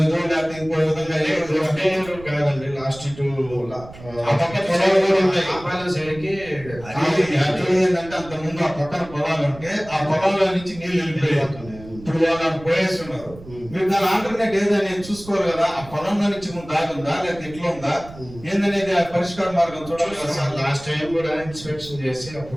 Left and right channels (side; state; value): right; noise; rumble, 17 dB below the sound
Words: లేకపోతే ఇంకో విధంగా కాదండి. లాస్ట్ ఆ పక్క పొలాలు కూడా ఉన్నాయి. ఏంటంటే అంత ముందు ఆ పక్కన పొలాలు ఉంటే ఆ పొలాల్లో నుంచి నీళ్లు వెళ్ళిపోయి ఇప్పుడు వాళ్ళు పోయేస్తున్నారు. మీరు దాని ఆల్టర్నేట్ ఏదనేది చూసుకోవాలి కదా. ఆ పొలంలో నుంచి దాగుందా లేకపోతే ఎట్లా ఉందా ఏందనేది ఆ పరిష్కార మార్గం చూడాలి కదా సార్. లాస్ట్ టైం కూడా ఇన్స్పెక్షన్ చేసి